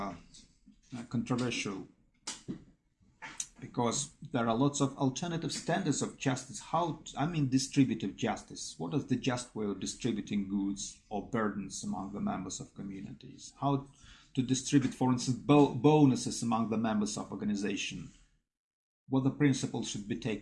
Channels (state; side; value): identical; both; correlation 1.00